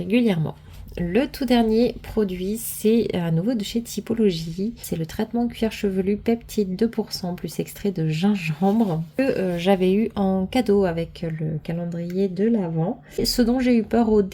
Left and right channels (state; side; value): identical; both; correlation 1.00